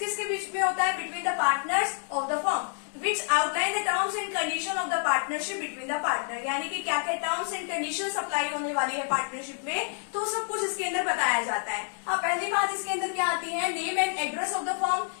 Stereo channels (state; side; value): silent; right; 59 dB below the other